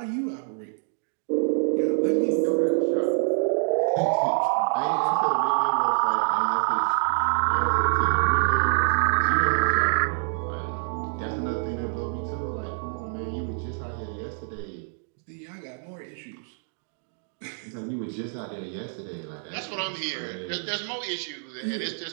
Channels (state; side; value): silent; left; digital silence